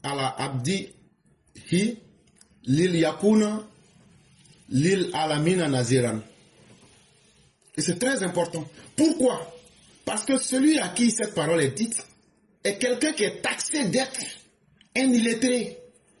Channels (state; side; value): identical; both; correlation 1.00